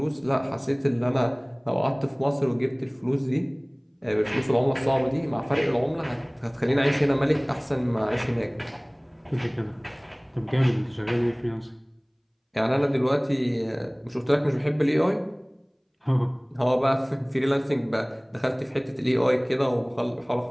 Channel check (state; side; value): identical; both; correlation 1.00